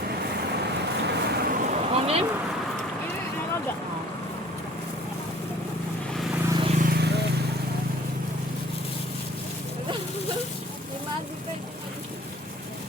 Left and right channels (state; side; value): normal; both; correlation 0.52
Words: Kunin? Ano ba? May magi ka.